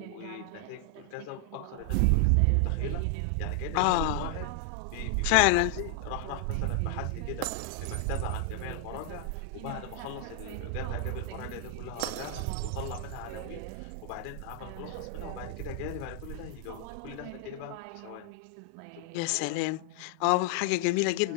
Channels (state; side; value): different; both; correlation 0.00